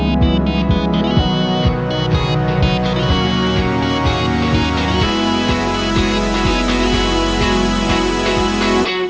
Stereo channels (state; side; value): identical; both; correlation 1.00